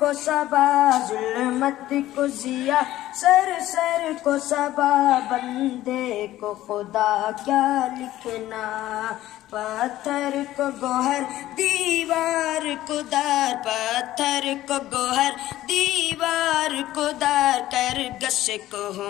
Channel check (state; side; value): quieter; right; 14.7 dB